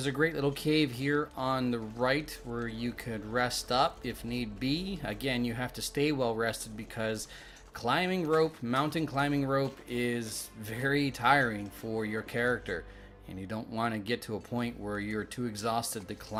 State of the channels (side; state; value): both; identical; correlation 1.00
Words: a great little cave here on the right where you could rest up if need be. Again, you have to stay well rested because climbing rope, mountain climbing rope, is very tiring for your character. And you don't want to get to a point where you're too exhausted to